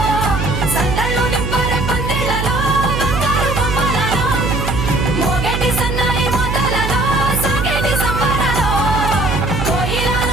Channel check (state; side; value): noise; right; hum, 2 dB below the sound